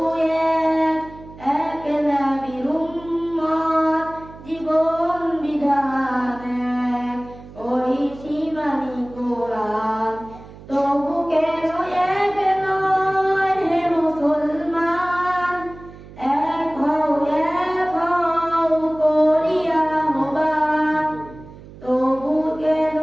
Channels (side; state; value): right; noise; hum, 18 dB below the sound